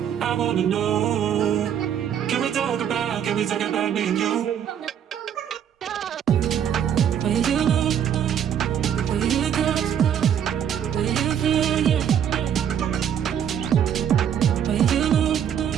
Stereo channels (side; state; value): left; quieter; 9.1 dB